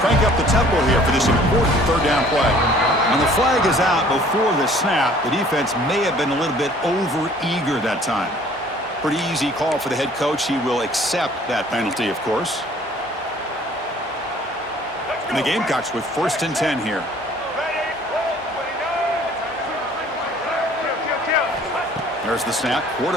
up the tempo here for this important third down play. When the flag is out before the snap, the defense may have been a little bit over-eager that time. Pretty easy call for the head coach. He will accept that penalty, of course. And the Gamecocks with 1st and 10 here. There's the snap.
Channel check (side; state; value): both; normal; correlation 0.54